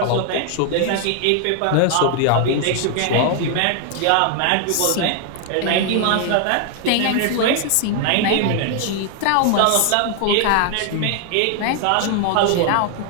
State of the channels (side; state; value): both; different; correlation 0.00